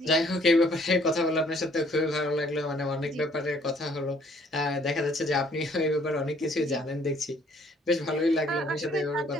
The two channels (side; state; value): both; normal; correlation 0.62